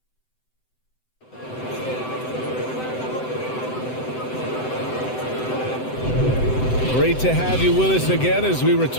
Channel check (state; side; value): late; right; 7.8 ms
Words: Great to have you with us again as we